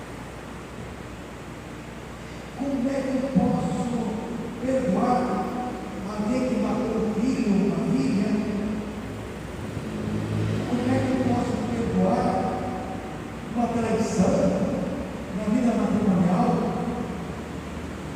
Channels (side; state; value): both; identical; correlation 1.00